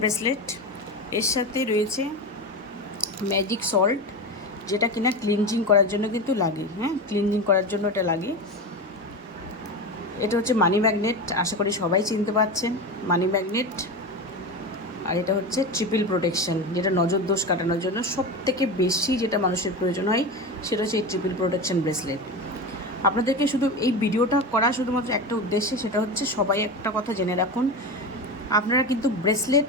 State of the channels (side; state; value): both; normal; correlation 0.23